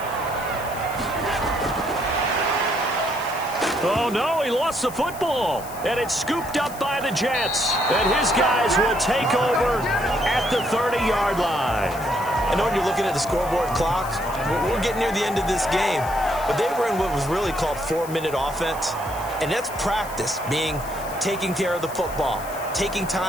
Oh, no, he lost the football. And it's scooped up by the Jets. And his guys will take over at the 30-yard line. I know when you're looking at the scoreboard clock, we're getting near the end of this game. But they were in what was really called 4-minute offense. And that's practice, meaning taking care of the football, taking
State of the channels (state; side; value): noise; left; hiss, 15 dB below the sound